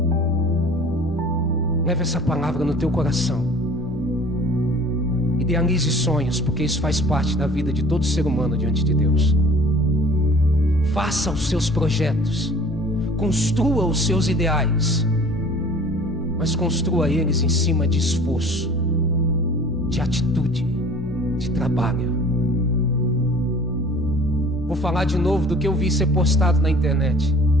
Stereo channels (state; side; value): normal; both; correlation 0.47